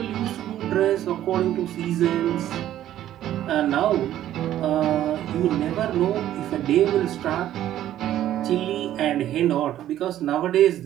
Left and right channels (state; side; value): quieter; left; 12.4 dB